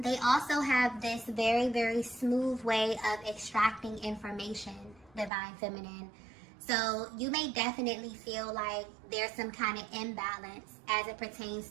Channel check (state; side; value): drops out; left; at 5.3 s